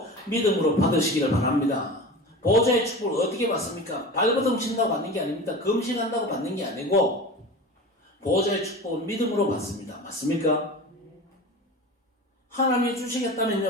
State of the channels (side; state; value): both; normal; correlation 0.32